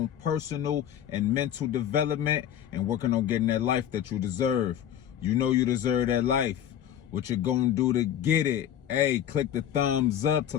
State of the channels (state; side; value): quieter; right; 10.2 dB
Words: personal and mental development and working on getting that life that you deserve. You know you deserve that life. What you're gonna do to get it? Hey, click the thumbs up to